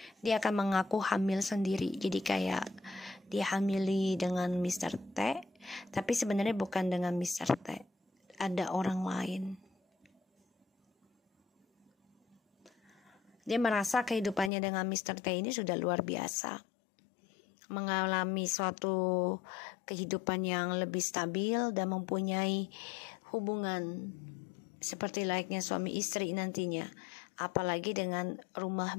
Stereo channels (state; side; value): drops out; right; at 14.5 s